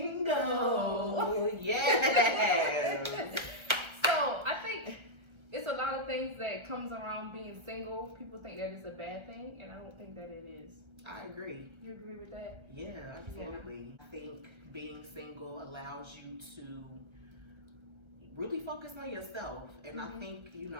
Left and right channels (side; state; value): left; late; 1.3 ms